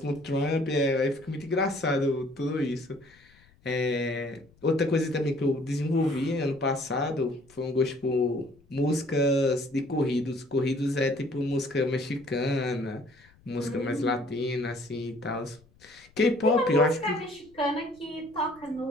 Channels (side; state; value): left; noise; rumble, 29 dB below the sound